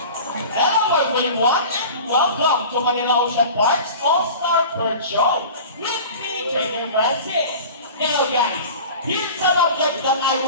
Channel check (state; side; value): inverted; both; correlation -0.37